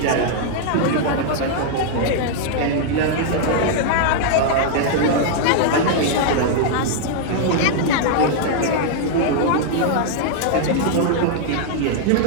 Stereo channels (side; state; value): both; different; correlation -0.01